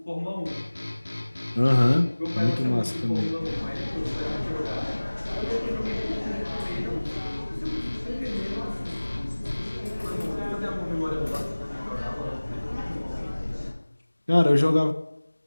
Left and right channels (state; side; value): inverted; both; correlation -1.00